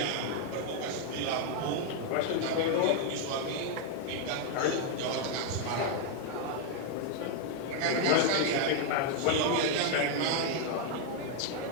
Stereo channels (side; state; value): both; different; correlation 0.00